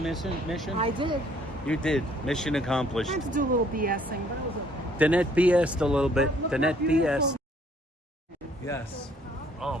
I did. You did. Mission accomplished. I had to do a little BSing, but it was okay. Danette BS'd a little bit. Look how Danette beautiful. BS. Yes. Oh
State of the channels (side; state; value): both; normal; correlation 0.62